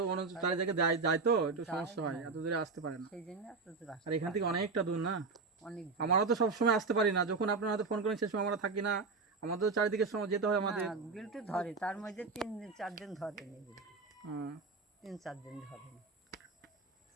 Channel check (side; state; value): left; quieter; 4.3 dB